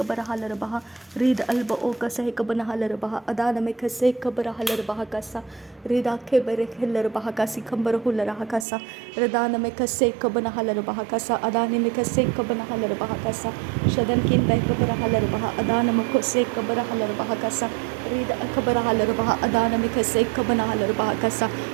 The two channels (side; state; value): left; drops out; at 8.7 s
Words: halarabaha rid alba o kase kabana halarabaha adana me kase kabara halarabaha kasa rida ke bere halarabaha kasi kambara hularaha kasa ridana me kase kabana halarabaha kasa adani me kase kabana halarabaha kasa shadankin be kabara halarabaha adana me kase kabara halarabaha kasa rida kabara halarabaha adana me kase kabana halarabaha kasa